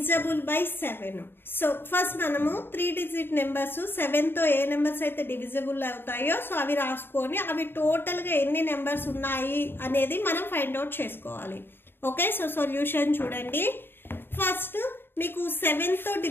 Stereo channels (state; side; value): late; right; 0.10 ms